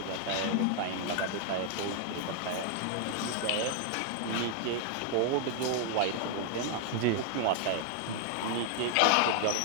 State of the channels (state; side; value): different; both; correlation 0.00